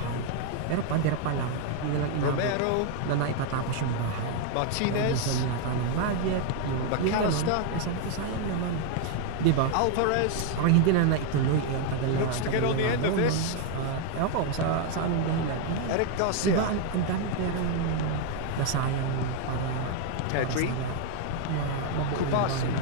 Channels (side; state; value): both; different; correlation 0.00